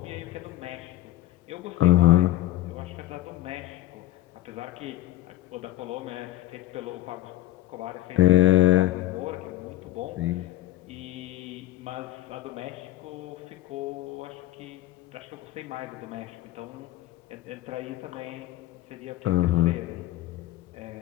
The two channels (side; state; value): right; quieter; 14.7 dB